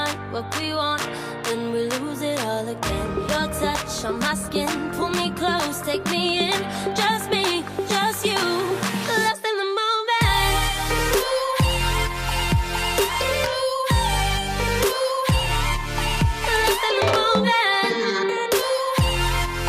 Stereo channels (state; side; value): identical; both; correlation 1.00